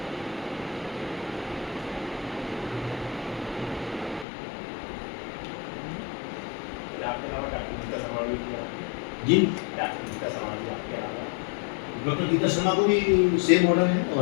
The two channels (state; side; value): drops out; right; at 4.2 s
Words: जी डॉक्टर गीता शर्मा को भी सेम ऑर्डर है